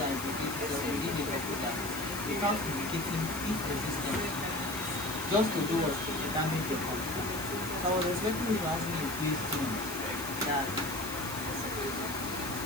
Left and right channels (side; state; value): left; noise; hiss, 9 dB below the sound